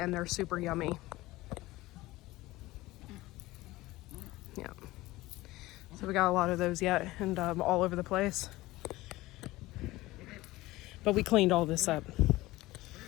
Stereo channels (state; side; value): quieter; right; 18.7 dB